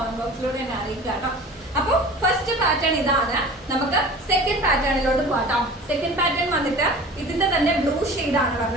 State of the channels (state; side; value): normal; both; correlation 0.40